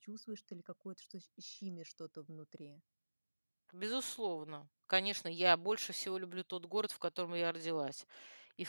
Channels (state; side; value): inverted; both; correlation -1.00